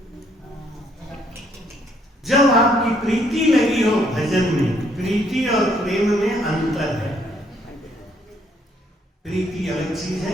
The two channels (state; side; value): normal; both; correlation 0.68